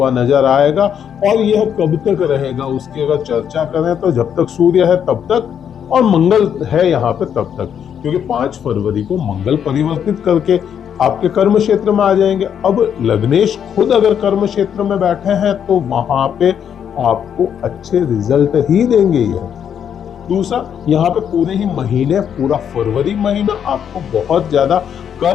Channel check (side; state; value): right; quieter; 8.5 dB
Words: नजर आएगा। और यह कब तक रहेगा उसकी अगर चर्चा करें तो जब तक सूर्य है तब तक और मंगल है यहाँ पे तब तक, क्योंकि 5 फरवरी को मंगल परिवर्तित करके आपके कर्म क्षेत्र में आ जाएंगे। अब लग्नेश खुद अगर कर्म क्षेत्र में बैठे हैं तो वहां पे आपको अच्छे रिजल्ट ही देंगे। यह दूसरा, यहाँ पे पूरे ही महीने, पूरा फरवरी महीना आपको बहुत ज्यादा